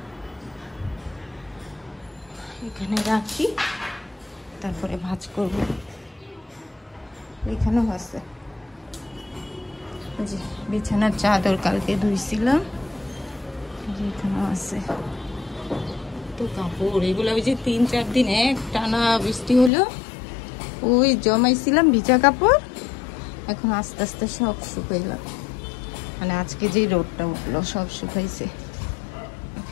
এখানে রাখি, তারপরে ভাঁজ করব। এখানেও আছে যে বিছানার চাদর কালকে ধুইছিলাম, এখানেও আছে। তো কাপড় এগুলো ওই যে 3-4 দিন এক টানা বৃষ্টি হলো, ওই জমাইছিলাম ভিজা কাপড়, এখন আস্তে আস্তে সব শুকাইলাম। মানে আজকে যে রোদটা উঠলো সব শুকাইছে।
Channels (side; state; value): right; drops out; at 19.7 s